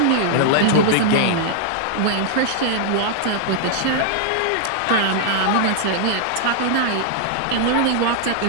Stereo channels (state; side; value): different; both; correlation -0.01